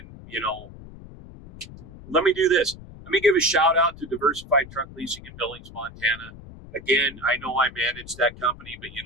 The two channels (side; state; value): left; noise; rumble, 17 dB below the sound